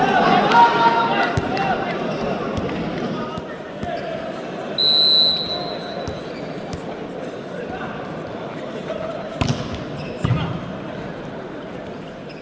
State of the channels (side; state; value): both; identical; correlation 1.00